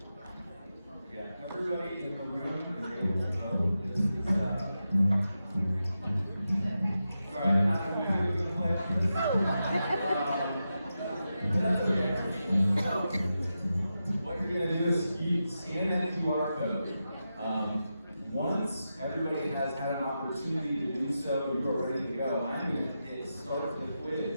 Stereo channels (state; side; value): inverted; both; correlation -0.89